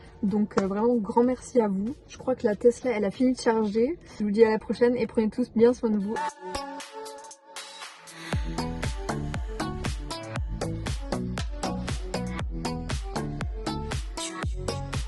Donc vraiment grand merci à vous. Je crois que la Tesla, elle a fini de charger. Je vous dis à la prochaine et prenez tous bien soin de vous.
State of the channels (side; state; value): both; identical; correlation 1.00